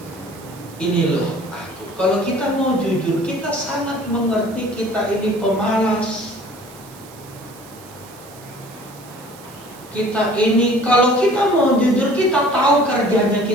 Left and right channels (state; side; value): noise; right; hiss, 22 dB below the sound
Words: Ini loh. Kalau kita mau jujur, kita sangat mengerti kita ini pemalas. Kita ini, kalau kita mau jujur, kita tahu kerjanya